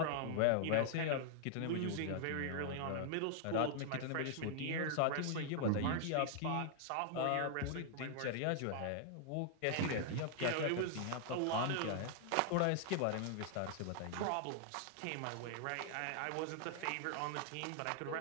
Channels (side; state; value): both; different; correlation -0.01